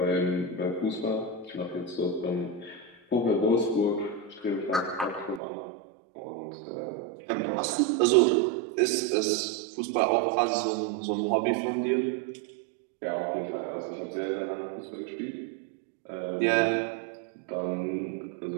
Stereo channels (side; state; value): left; drops out; at 5.4 s